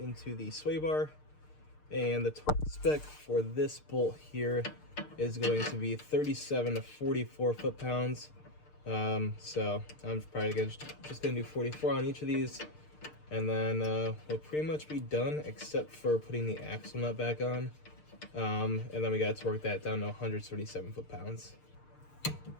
the sway bar, and the torque spec for this bolt here is going to be 37 to 44 foot-pounds. So I'm probably just gonna do 44 on each of these, and then we'll pretty much be done except for putting the axle nut back on. And then we gotta torque that down to 137 foot-pounds.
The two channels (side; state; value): right; late; 6.6 ms